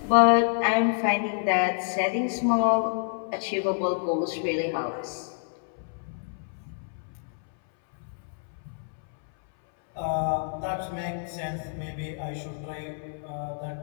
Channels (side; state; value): right; silent; 59 dB below the other